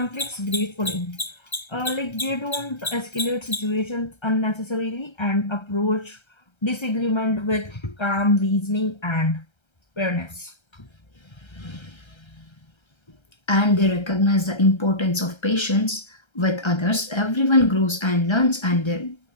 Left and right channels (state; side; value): late; right; 1.3 ms